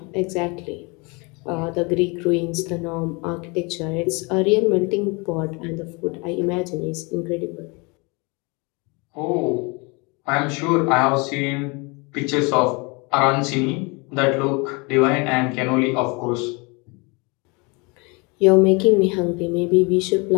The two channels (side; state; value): right; quieter; 29.0 dB